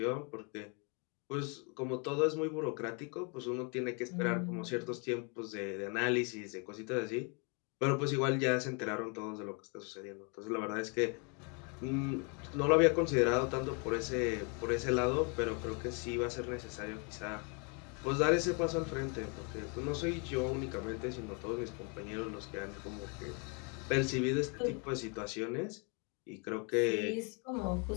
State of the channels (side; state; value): right; quieter; 35.2 dB